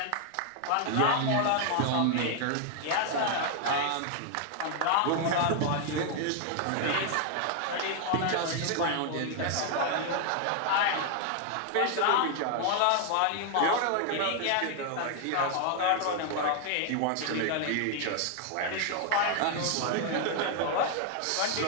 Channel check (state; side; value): different; both; correlation 0.00